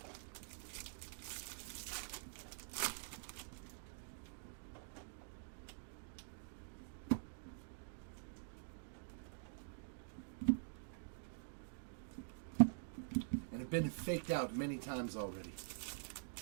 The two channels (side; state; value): left; silent; digital silence